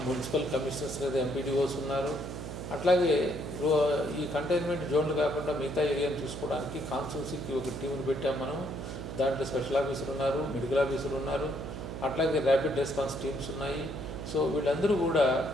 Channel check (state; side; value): noise; right; hum, 7 dB below the sound